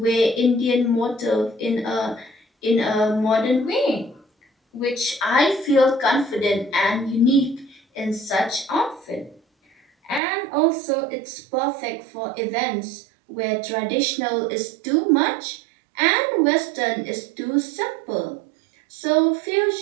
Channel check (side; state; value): left; drops out; at 10.2 s